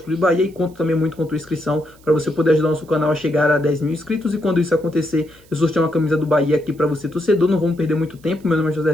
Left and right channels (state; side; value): noise; right; hiss, 29 dB below the sound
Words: Clube Bahia, e conto também muito com a tua inscrição para você poder ajudar o nosso canal a chegar a 10 mil inscritos. E quando isso acontecer, eu sorteio uma camisa do Bahia aqui para você, torcedor. Não vamos perder muito tempo. Meu nome é